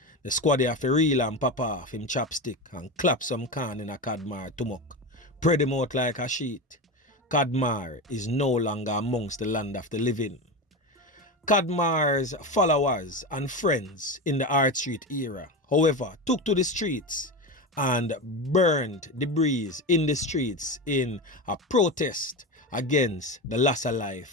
The squaddy have to reel and pop off him chopstick and clap some can in a Kadmar tumok. Spread him out like a sheet. Kadmar is no longer amongst the land of the living. Kadmar's followers and friends in the Hart Street era, however, took to the streets and burned debris in the streets in a protest against the loss of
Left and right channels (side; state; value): both; normal; correlation 0.21